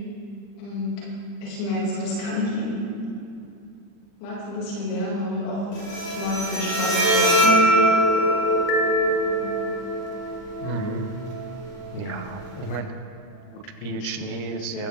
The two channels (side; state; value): right; late; 40 ms